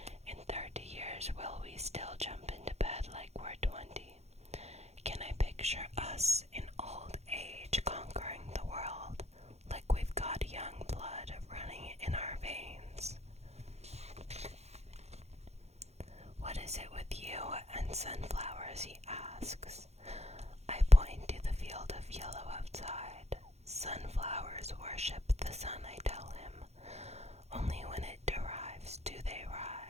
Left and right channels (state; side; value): late; left; 0.31 ms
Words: In 30 years, will we still jump into bed like we're 20? Can I picture us in old age conquering the world, like we've got young blood running in our veins? What is it with you and sunflowers, he asks. I point to the field of yellow outside. Sunflowers worship the sun, I tell him. Only when it derives do they